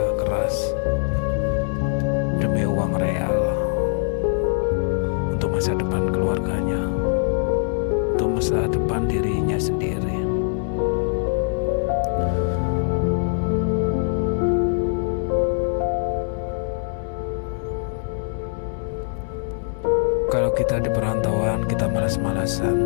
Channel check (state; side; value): silent; right; digital silence